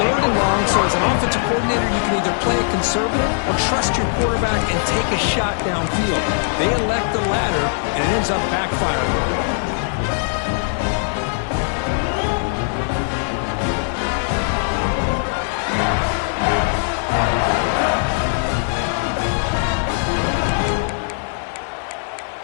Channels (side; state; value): right; silent; digital silence